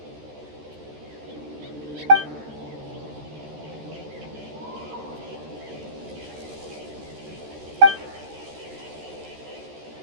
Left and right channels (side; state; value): left; late; 13 ms